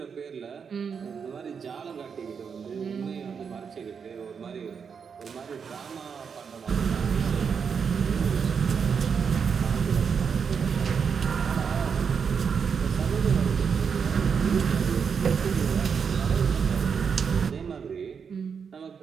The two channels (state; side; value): quieter; left; 6.4 dB